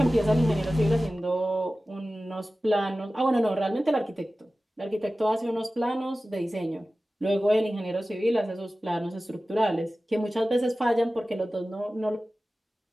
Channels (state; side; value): normal; both; correlation 0.96